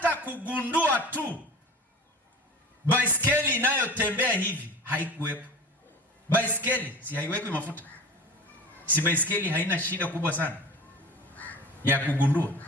kugundua tu baiskeli inayotembea hivi haikuwepo. Baiskeli si haiwekwi mafuta? Si baiskeli haina shida kubwa sana ya kugundua?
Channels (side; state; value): both; normal; correlation 0.36